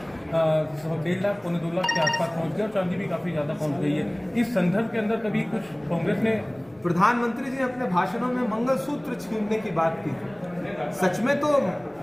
1.5 लाख पौने 2 लाख के आसपास पहुंच गया और चांदी भी काफी ज्यादा पहुंच गई है। इस संदर्भ के अंदर कभी कुछ कांग्रेस ने, प्रधानमंत्री जी ने अपने भाषणों में मंगलसूत्र छीनने की बात की। सच में तो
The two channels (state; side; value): noise; left; rumble, 29 dB below the sound